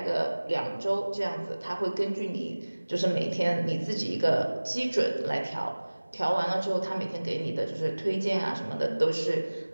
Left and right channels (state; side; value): inverted; both; correlation -1.00